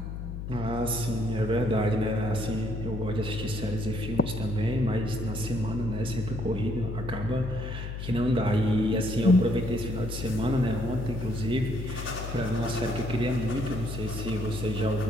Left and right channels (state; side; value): noise; left; hum, 6 dB below the sound